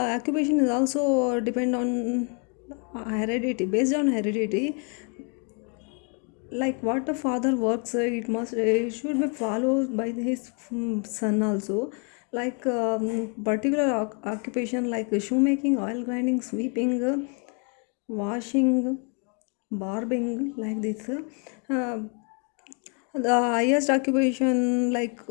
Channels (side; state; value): right; quieter; 37.9 dB